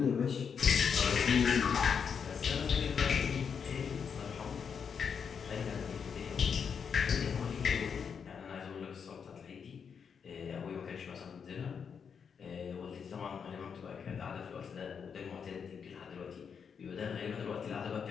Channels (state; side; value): quieter; right; 6.7 dB